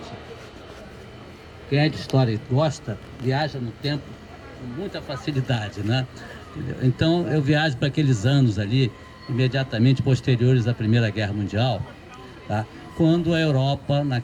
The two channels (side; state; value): both; identical; correlation 1.00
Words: Quem é de história e gosta, viaja no tempo com muita facilidade, né? Então eu viajo para aqueles anos ali, imediatamente posteriores à Primeira Guerra Mundial, tá? Quando a Europa,